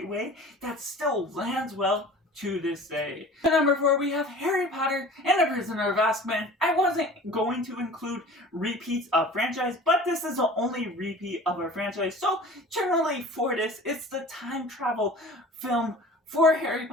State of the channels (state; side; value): normal; both; correlation 0.42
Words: way that still lands well to this day. At number 4, we have Harry Potter and the Prisoner of Azkaban. I wasn't going to include repeats of franchise, but this is the only repeat of our franchise, so generally for this, it's the time travel film for Harry